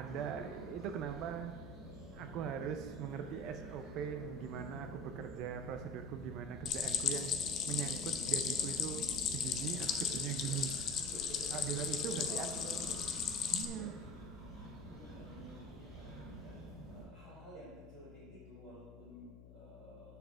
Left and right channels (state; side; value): noise; left; hum, 17 dB below the sound